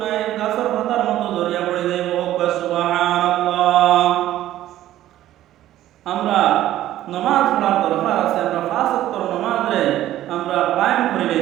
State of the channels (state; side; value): quieter; left; 13.5 dB